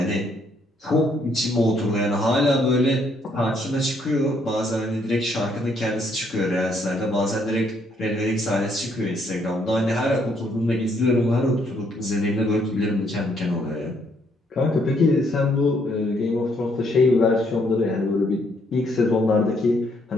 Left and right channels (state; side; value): normal; both; correlation 0.70